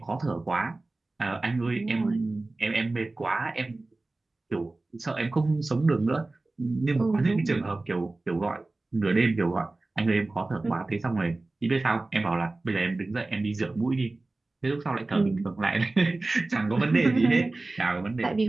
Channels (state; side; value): quieter; left; 3.1 dB